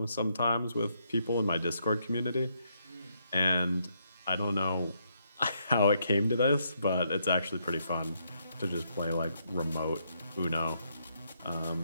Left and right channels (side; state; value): both; inverted; correlation -0.75